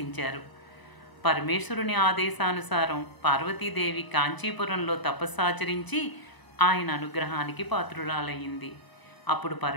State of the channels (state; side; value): late; right; 1.0 ms